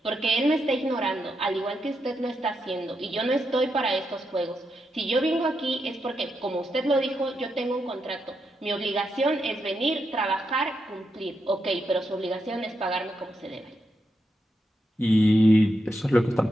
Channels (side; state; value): both; normal; correlation 0.84